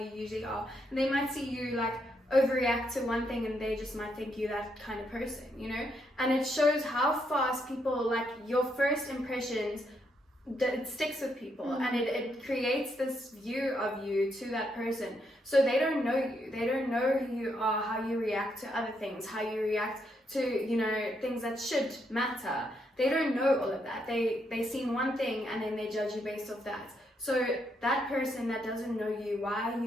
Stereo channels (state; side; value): normal; both; correlation 0.77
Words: usually are. And they might see you like overreact to one thing and they just might think you that kind of person, you know. And it shows how fast people, like, your first impressions, it sticks with people, and it creates this view of you to that person. So they don't know you, they don't know who you are, how you react to other things, how you react to, you know, things that should matter. They don't know all of that. They see one thing and then they judge you based off that. So that person that doesn't know you, why are